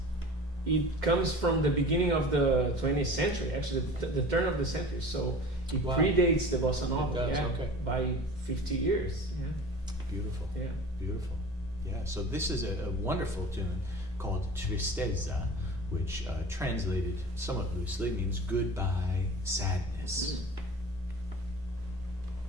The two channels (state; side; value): normal; both; correlation 0.39